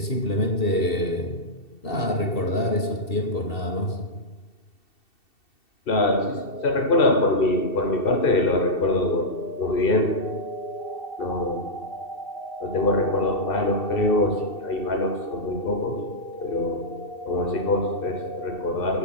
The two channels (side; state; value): right; late; 2.7 ms